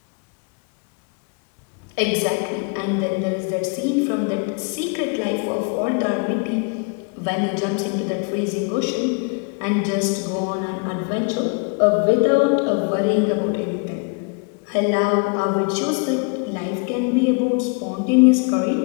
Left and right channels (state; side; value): quieter; right; 34.9 dB